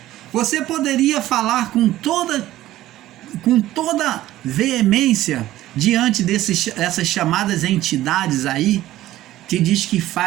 Você poderia falar com toda veemência diante dessas chamadas entidades aí, que diz que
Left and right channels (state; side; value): quieter; left; 14.8 dB